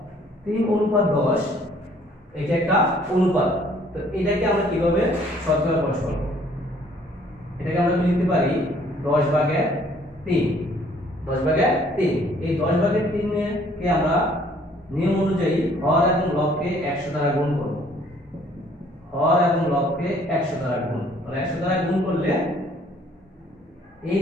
3:10, এটা একটা অনুপাত। তো এটাকে আমরা কিভাবে শতকরা প্রকাশ করব, এটাকে আমরা লিখতে পারি 10 ভাগের 3, 10 ভাগের 3। এই 10 ভাগের 3 কে আমরা নিয়ম অনুযায়ী হর এবং লবকে 100 দ্বারা গুণ করব। হর এবং লবকে 100 দ্বারা গুণ, তাহলে 100 দ্বারা গুণ করলে এই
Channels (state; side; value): normal; both; correlation 0.60